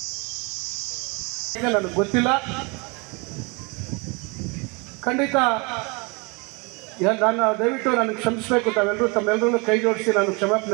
ನನಗೆ ಗೊತ್ತಿಲ್ಲ. ಖಂಡಿತ ನಾನು ದಯವಿಟ್ಟು ನನಗೆ ಕ್ಷಮಿಸಬೇಕು. ತಮ್ಮೆಲ್ಲರೂ ಕೈ ಜೋಡಿಸಿ ನಾನು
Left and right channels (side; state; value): left; quieter; 29.9 dB